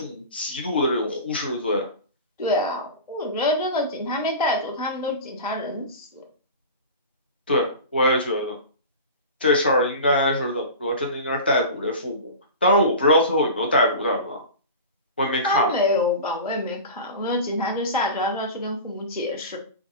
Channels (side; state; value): both; inverted; correlation -0.32